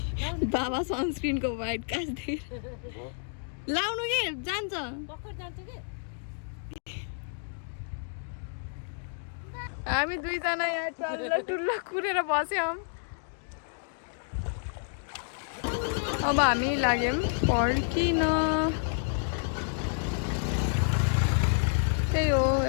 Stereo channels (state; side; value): silent; right; digital silence